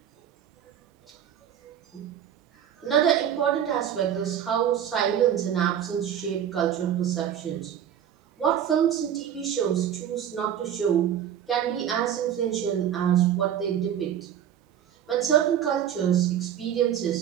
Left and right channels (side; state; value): left; quieter; 9.7 dB